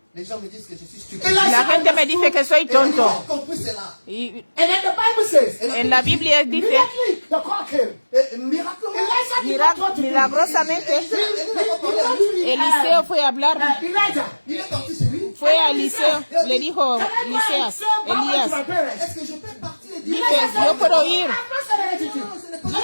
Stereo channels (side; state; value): both; inverted; correlation -1.00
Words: Les gens me disent que je suis stupide. La gente me dice que soy Ils tonto. ont compris cela. Y And then the Bible says, en la Biblia dice, immediately the call came. Miraculeusement. Elisha did not want to do it. milagrosamente, Elle n'a pas parlé à lui. Eliseo fue a hablar, Elijah, Il est parti chez lui. fue a Eliseo, le dijo can I go and Elías, say Papa to my Elías, parents? Est-ce que je peux partir et dire dice, yo puedo ir. I've not said anything to you. non, ce n'est pas